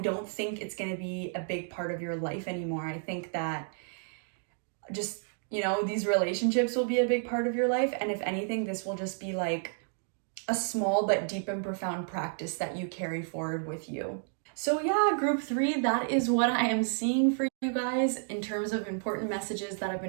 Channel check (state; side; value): silent; left; 57 dB below the other